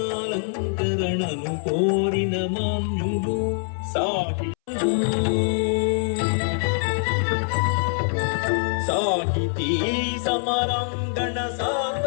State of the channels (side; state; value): right; silent; 63 dB below the other